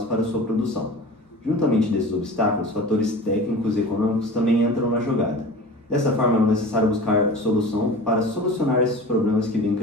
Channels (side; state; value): both; normal; correlation 0.36